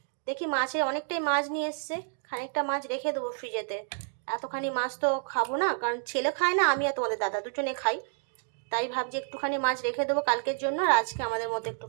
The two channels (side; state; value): left; silent; digital silence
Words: দেখি মাছের অনেকটাই মাছ নিয়ে এসছে, খানিকটা মাছ রেখে দেবো ফ্রিজেতে। এতখানি মাছ তো খাবো না, কারণ ছেলে খায় না, আমি আর তোমাদের দাদা দুজনে খাই। তাই ভাবছি একটুখানি মাছ রেখে দেবো কালকের জন্য, আর আজকে আমাদের মতো